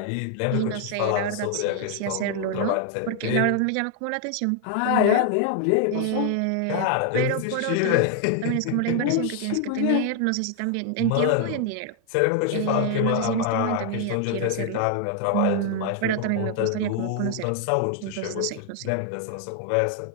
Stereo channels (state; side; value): different; both; correlation 0.00